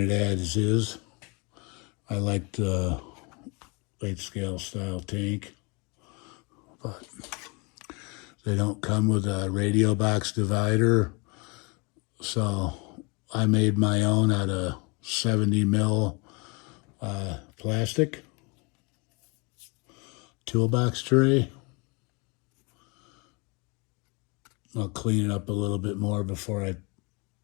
as is. I like the 8-scale style tank, but they don't come with a radio box divider. So I made my own out of 70 mil plastic toolbox tray. I'll clean it up a little bit more before I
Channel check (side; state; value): right; quieter; 30.2 dB